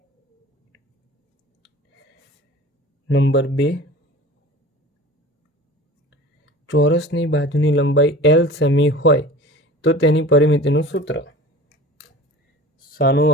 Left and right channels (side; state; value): both; normal; correlation 0.40